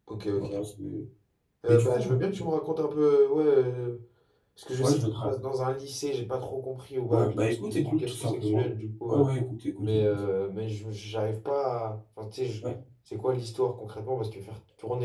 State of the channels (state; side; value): identical; both; correlation 1.00